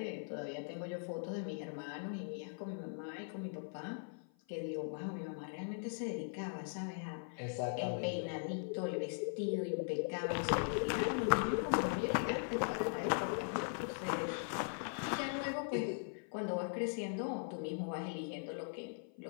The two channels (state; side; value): silent; right; 51 dB below the other